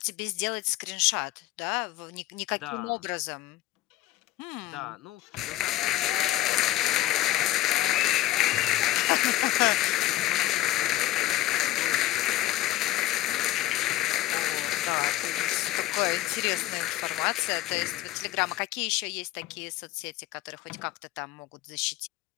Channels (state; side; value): quieter; right; 15.7 dB